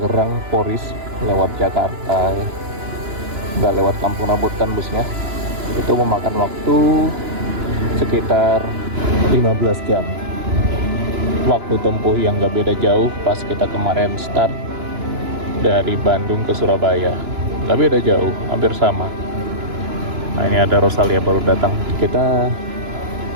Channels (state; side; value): late; left; 3.0 ms